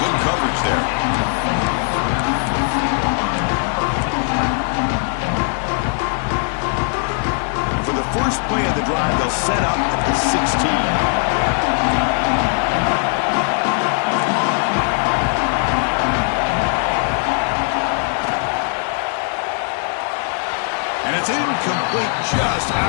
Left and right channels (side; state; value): right; silent; 55 dB below the other